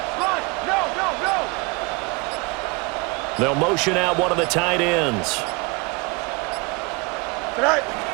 They'll motion out one of the tight ends. Tonight.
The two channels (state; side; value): quieter; left; 28.0 dB